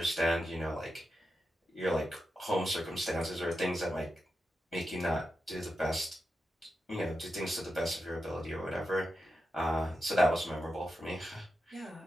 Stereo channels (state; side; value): normal; both; correlation 0.89